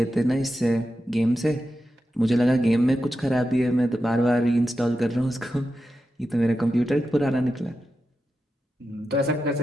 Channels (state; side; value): normal; both; correlation 0.90